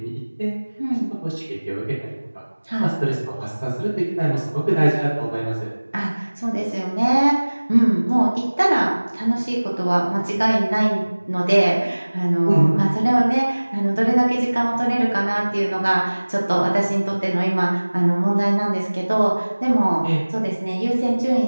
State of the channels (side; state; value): both; inverted; correlation -1.00